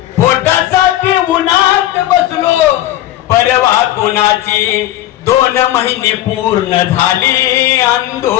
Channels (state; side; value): quieter; right; 14.0 dB